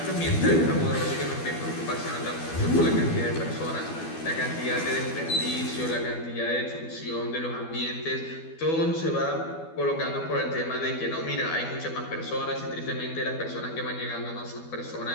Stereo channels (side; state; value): right; late; 12 ms